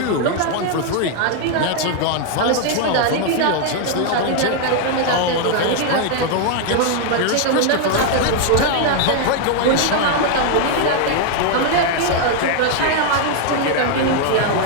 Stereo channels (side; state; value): both; different; correlation 0.00